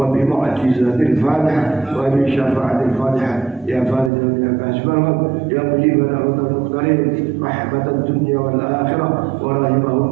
الفاتحة وبشفاعة الفاتحة يا فارج يا كاشف الغم يا مجيب دعوة المختارين رحمة الدنيا والآخرة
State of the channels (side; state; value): left; drops out; at 4.1 s